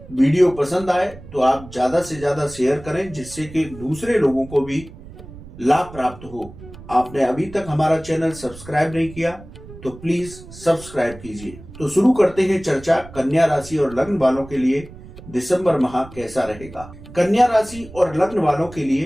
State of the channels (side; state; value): right; noise; rumble, 17 dB below the sound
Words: वीडियो पसंद आए तो आप ज्यादा से ज्यादा शेयर करें, जिससे कि दूसरे लोगों को भी लाभ प्राप्त हो। आपने अभी तक हमारा चैनल सब्सक्राइब नहीं किया तो प्लीज सब्सक्राइब कीजिए। तो शुरू करते हैं चर्चा कन्या राशि और लग्न वालों के लिए दिसंबर माह कैसा रहेगा। कन्या राशि और लग्न वालों के